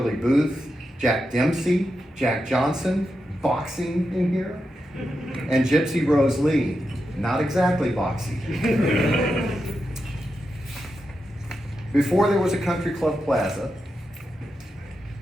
Booth, Jack Dempsey, Jack Johnson, boxing in here, and Gypsy Rose Lee. Not exactly boxy. Before there was a country club plaza,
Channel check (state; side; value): normal; both; correlation 0.88